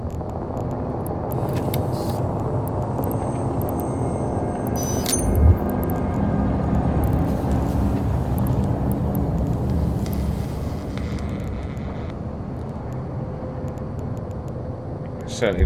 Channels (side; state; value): both; identical; correlation 1.00